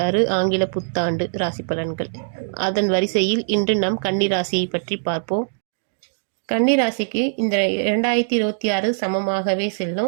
ஆங்கில புத்தாண்டு ராசி பலன்கள். அதன் வரிசையில் இன்று நாம் கன்னி ராசியை பற்றி பார்ப்போம். கன்னி ராசிக்கு இந்த 2026 சமமாகவே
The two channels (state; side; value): silent; left; digital silence